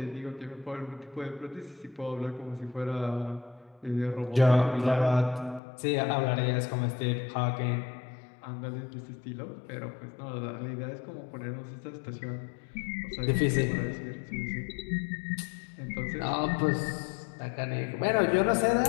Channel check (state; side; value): drops out; right; at 5.6 s